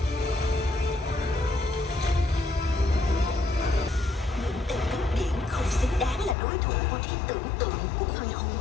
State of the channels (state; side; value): drops out; right; at 6.4 s